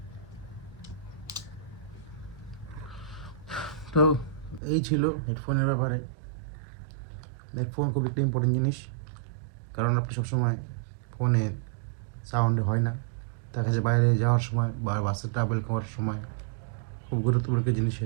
তো এই ছিল হেডফোনের ব্যাপারে। হেডফোন খুব একটা ইম্পর্টেন্ট জিনিস, কারণ আপনি সবসময় ফোনে সাউন্ড হয় না, দেখা যায় বাইরে যাওয়ার সময় বা বাসে ট্রাভেল করার সময় খুব গুরুত্বপূর্ণ একটা জিনিস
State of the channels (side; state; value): left; drops out; at 4.6 s